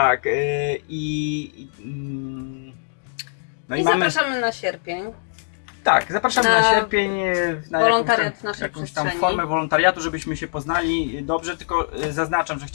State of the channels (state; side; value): silent; right; digital silence